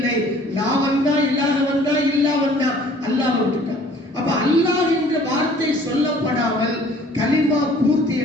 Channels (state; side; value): normal; both; correlation 0.53